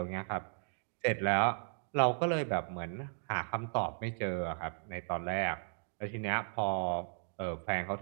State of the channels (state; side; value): silent; left; digital silence